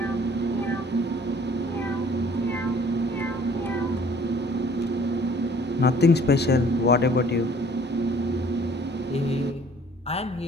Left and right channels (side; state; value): both; normal; correlation 0.55